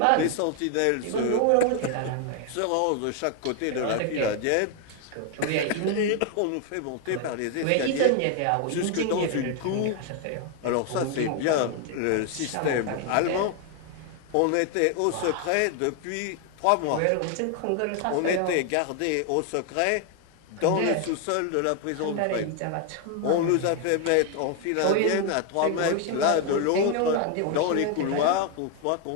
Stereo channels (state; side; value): different; both; correlation 0.01